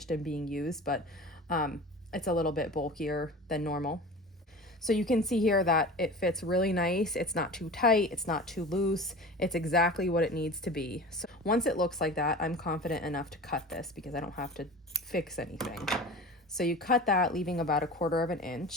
and being used, but it's a little bit bulkier than normal. So you can see here that it fits really nice. It's not too tight, it's not too loose. It's exactly what it needs to be. So once it looks like that, I'm confident enough to cut this because I don't have to fix anything. So you cut that, leaving about 1/4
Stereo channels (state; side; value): normal; both; correlation 0.35